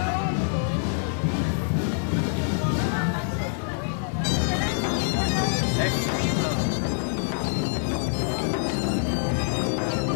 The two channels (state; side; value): silent; right; 57 dB below the other